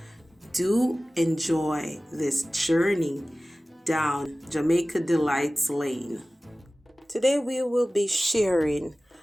Do enjoy this journey down Jamaica Delights Lane. Today we will be sharing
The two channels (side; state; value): both; normal; correlation 0.97